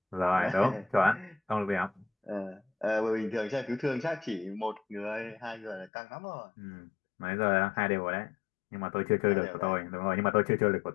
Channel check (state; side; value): drops out; right; at 5.9 s